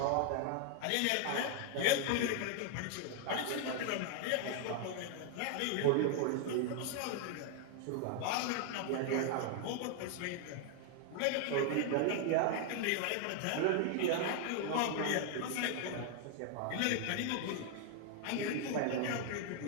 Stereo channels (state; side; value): different; both; correlation 0.00